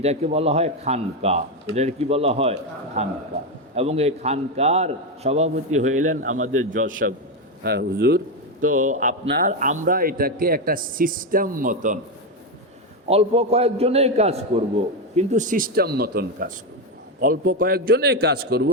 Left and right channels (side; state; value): both; normal; correlation 0.09